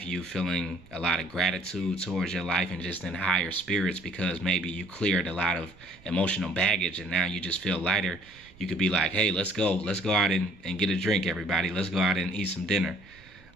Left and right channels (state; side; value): noise; right; rumble, 25 dB below the sound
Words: you feeling a lot of gratitude towards your life and just in higher spirits because maybe you cleared a lot of emotional baggage and now you just feel lighter. You could be like, hey, let's go out and get a drink, everybody. Let's go out and eat some dinner.